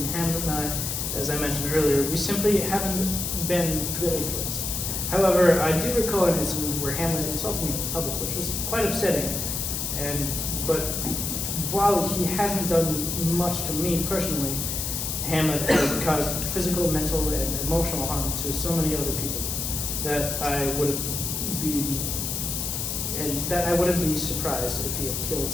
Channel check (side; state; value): left; noise; hiss, 2 dB below the sound